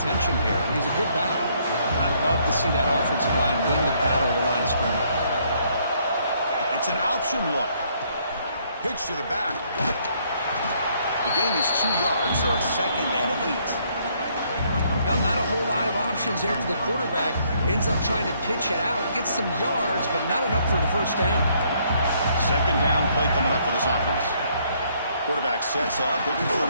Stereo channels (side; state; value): both; inverted; correlation -0.68